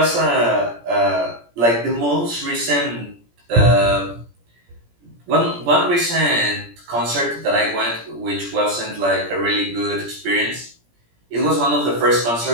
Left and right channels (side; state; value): left; late; 17 ms